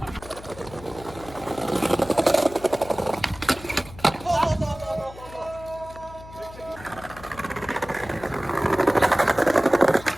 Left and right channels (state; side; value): noise; left; hum, 17 dB below the sound